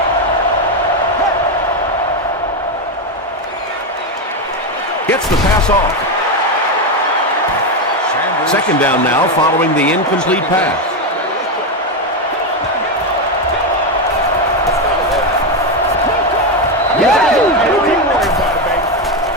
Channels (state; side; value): normal; both; correlation 0.09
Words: Gets the pass off. Second down now following the incomplete pass.